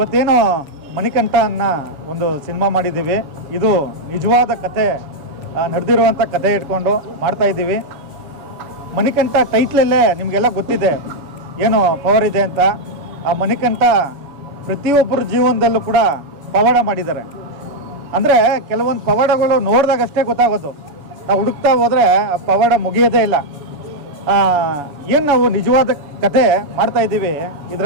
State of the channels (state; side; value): late; left; 7.0 ms